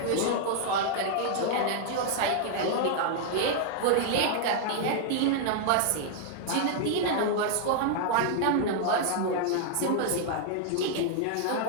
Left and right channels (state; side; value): different; both; correlation -0.01